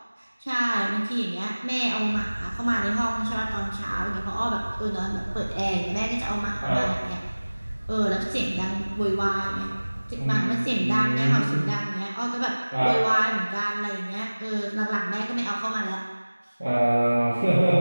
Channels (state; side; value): inverted; both; correlation -1.00